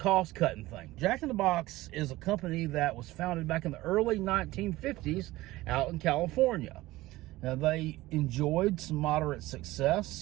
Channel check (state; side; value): quieter; left; 18.1 dB